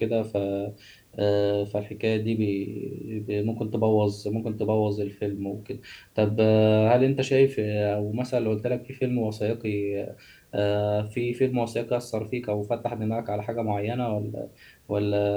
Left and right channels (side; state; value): both; identical; correlation 1.00